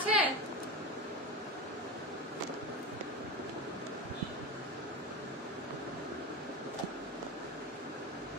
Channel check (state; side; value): normal; both; correlation 0.22